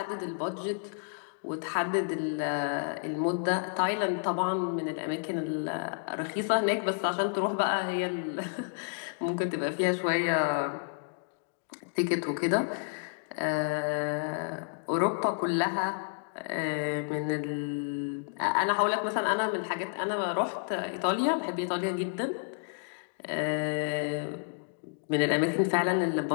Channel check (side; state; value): right; silent; digital silence